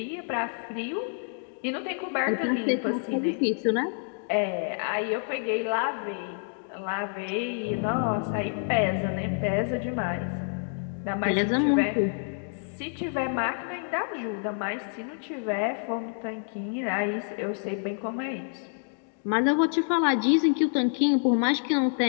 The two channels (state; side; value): silent; right; 59 dB below the other